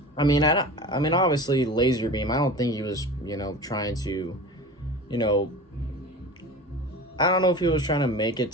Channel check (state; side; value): normal; both; correlation 0.34